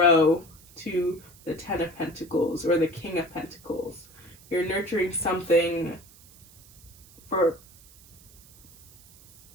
to the Ten of Pentacles or the King of Pentacles. You're nurturing something for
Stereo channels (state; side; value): noise; right; hiss, 24 dB below the sound